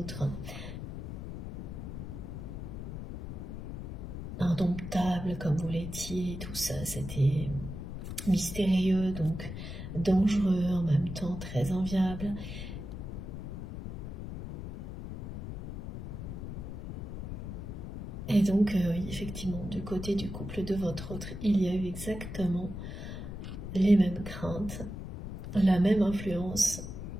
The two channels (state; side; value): noise; left; rumble, 8 dB below the sound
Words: indomptable comme vous l'étiez, tout ça, c'était mystérieux, donc dangereux, en même temps très enviable. Et donc, effectivement, du côté du couple de votre autre, il y a eu exactement les mêmes craintes, la même influence